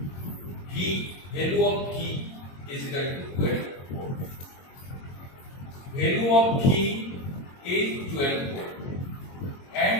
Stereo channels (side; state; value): right; late; 22 ms